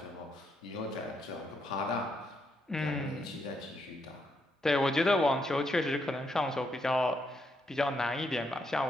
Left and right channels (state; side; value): normal; both; correlation 0.78